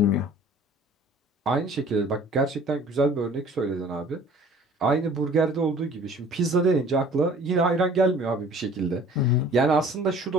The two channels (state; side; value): normal; both; correlation 0.50